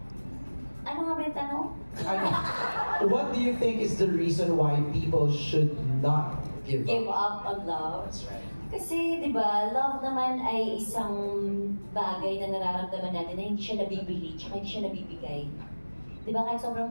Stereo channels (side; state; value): both; inverted; correlation -1.00